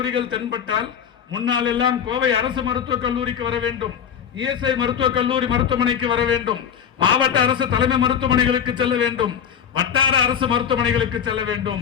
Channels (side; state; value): right; quieter; 8.2 dB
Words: தென்பட்டால் முன்னால் எல்லாம் கோவை அரசு மருத்துவக் கல்லூரிக்கு வர வேண்டும், இஎஸ்ஐ மருத்துவக் கல்லூரி மருத்துவமனைக்கு வர வேண்டும், மாவட்ட அரசு தலைமை மருத்துவமனைகளுக்கு செல்ல வேண்டும், வட்டார அரசு மருத்துவமனைகளுக்கு செல்ல